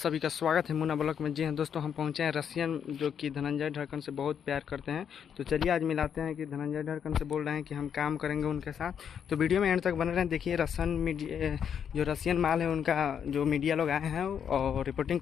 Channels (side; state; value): right; quieter; 8.0 dB